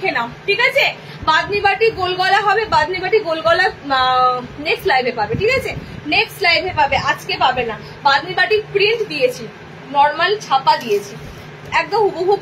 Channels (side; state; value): both; identical; correlation 1.00